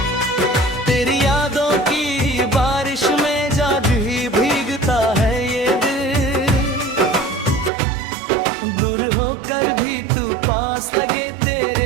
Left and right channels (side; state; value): left; drops out; at 7.7 s